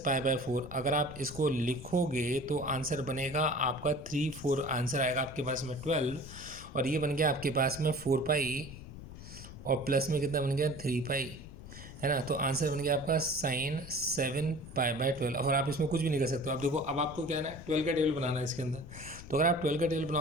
pi by 4 अगर आप इसको लिखोगे तो आंसर बनेगा आपका 3 4, आंसर आएगा आपके पास में 12, और ये बन गया आपके पास में 4 पाई और प्लस में कितना बन गया 3 पाई, है ना। तो आंसर बन गया आपका साइन 7 पाई बाय 12। और आप इसमें कुछ भी नहीं कर सकते हो। अब देखो, अब आपको क्या है ना, 12 का टेबल बनाना है इसके अंदर। तो अगर आप 12 का टेबल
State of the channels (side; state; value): left; noise; rumble, 14 dB below the sound